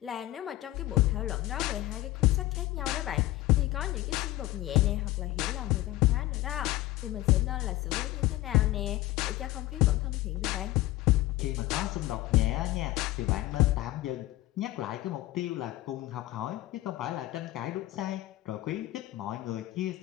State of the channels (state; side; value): quieter; right; 17.0 dB